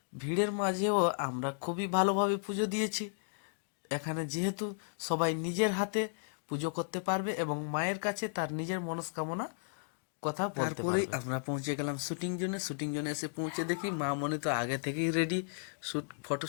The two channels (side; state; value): right; silent; digital silence